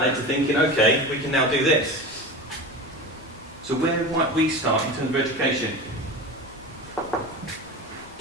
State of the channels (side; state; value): both; normal; correlation 0.29